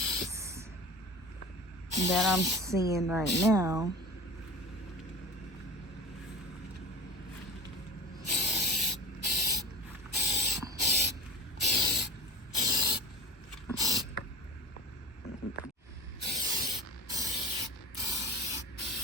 that I'm seeing right now.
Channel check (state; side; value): normal; both; correlation 0.34